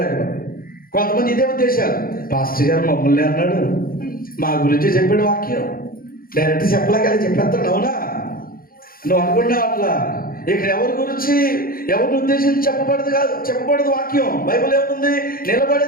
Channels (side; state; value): right; late; 0.42 ms